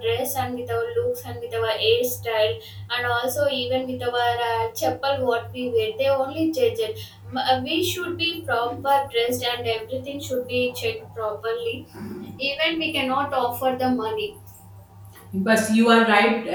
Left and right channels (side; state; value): both; identical; correlation 1.00